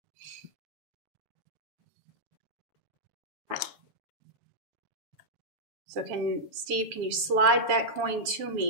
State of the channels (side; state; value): left; late; 7.5 ms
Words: So Steve, can you slide that coin to